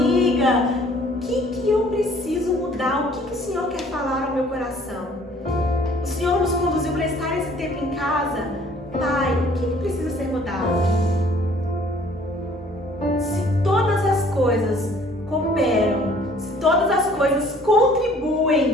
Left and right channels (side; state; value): both; normal; correlation 0.56